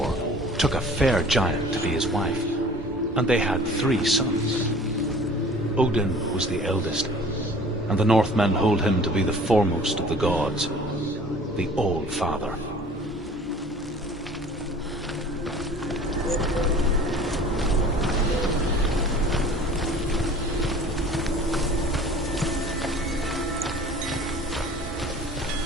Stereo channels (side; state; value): both; normal; correlation 0.47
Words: took a fair giant to be his wife, and they had 3 sons. Odin was the eldest, and the Northmen hold him to be the foremost of the gods, the All-Father.